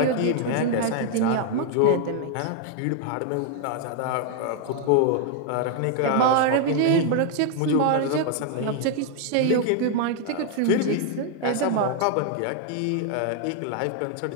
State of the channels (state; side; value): different; both; correlation 0.00